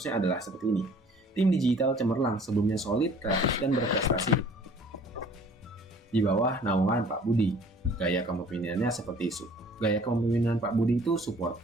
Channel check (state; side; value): normal; both; correlation 0.52